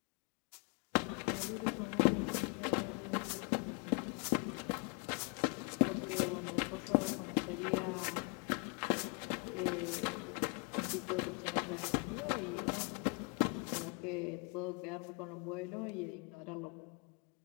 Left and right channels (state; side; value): quieter; right; 34.4 dB